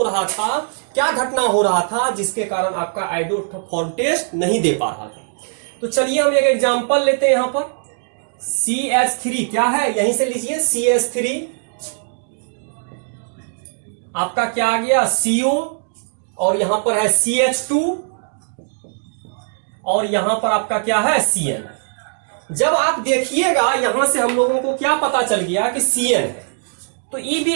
रहा था, क्या घटना हो रहा था जिसके कारण आपका आइडोफॉर्म टेस्ट नहीं दे पा रहा था। तो चलिए हम एक एग्जांपल लेते हैं। यहां पर CH3 क्या है, यहीं से लीजिए, CH3 आपका क्या आ गया, CO, और यहां पर है CH2, और यहां पर आपका क्या है, CN। जब आप देखिएगा यहां से हम लोगों को क्या पता चल गया कि CN है, तो ये भी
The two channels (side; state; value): left; silent; digital silence